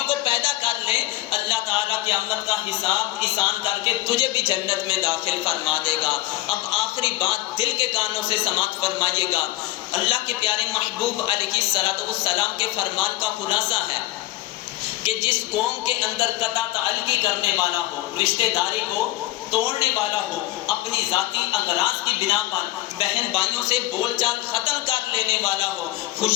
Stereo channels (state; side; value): quieter; right; 16.9 dB